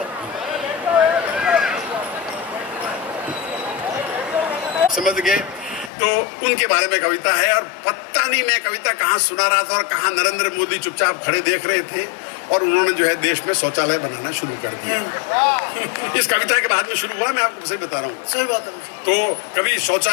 समझ गए? तो उनके बारे में कविता है। और पता नहीं मैं कविता कहाँ सुना रहा था और कहाँ नरेंद्र मोदी चुपचाप खड़े देख रहे थे, और उन्होंने जो है देश में शौचालय बनाना शुरू कर दिया। इस कविता के बाद में शुरू हुआ, मैं आपको सही बता रहा हूँ। सही बात है। तो कभी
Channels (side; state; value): right; drops out; at 5.9 s